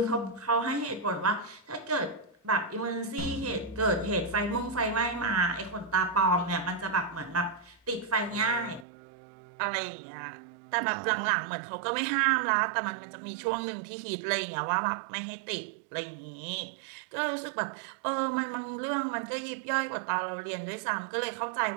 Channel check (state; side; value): drops out; left; at 8.8 s